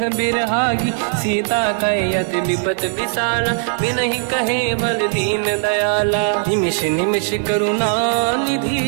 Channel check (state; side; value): silent; left; 66 dB below the other